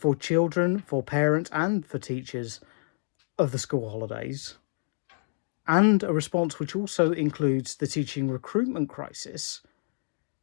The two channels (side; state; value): right; silent; digital silence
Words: children, for parents, and for teachers of the school holidays, and a response which also includes the teaching recruitment crisis,